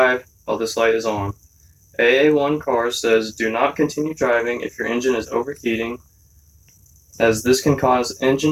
while this light is on. AA1 car says do not continue driving if your engine is overheating, as this can cause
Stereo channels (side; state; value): both; identical; correlation 1.00